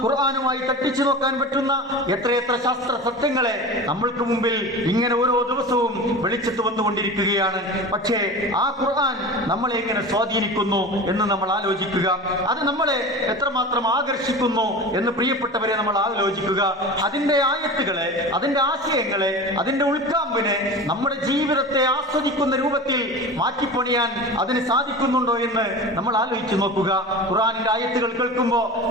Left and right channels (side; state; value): both; normal; correlation 0.32